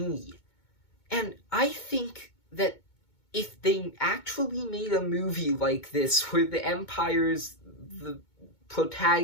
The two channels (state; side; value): late; right; 2.2 ms